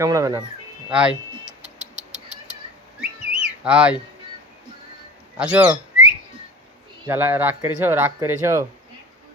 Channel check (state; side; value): normal; both; correlation 0.36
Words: না। আই আই আসো। জ্বালা রাগ করেছো? রাগ করেছো?